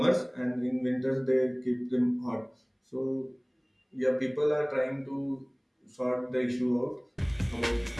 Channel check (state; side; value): identical; both; correlation 1.00